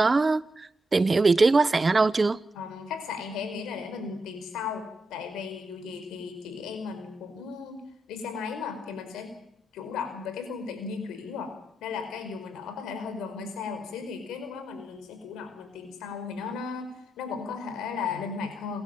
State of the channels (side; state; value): both; normal; correlation 0.85